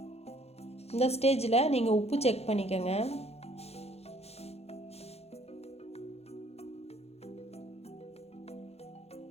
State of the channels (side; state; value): right; late; 0.30 ms